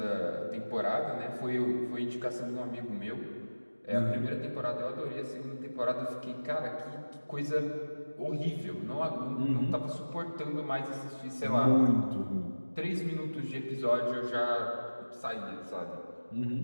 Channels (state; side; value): inverted; both; correlation -1.00